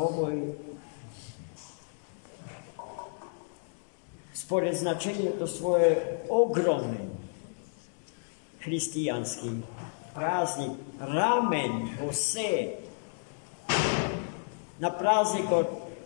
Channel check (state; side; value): silent; right; digital silence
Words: spored značenju svoje ogromni hristijanski praznik Ramen Bose na praznik od